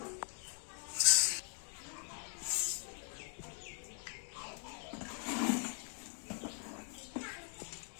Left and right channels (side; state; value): right; silent; 50 dB below the other